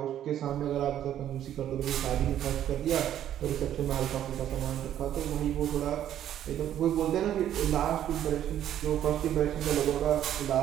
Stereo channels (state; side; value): quieter; left; 11.1 dB